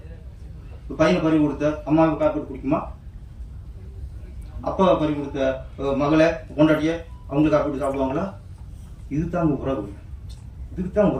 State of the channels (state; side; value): identical; both; correlation 1.00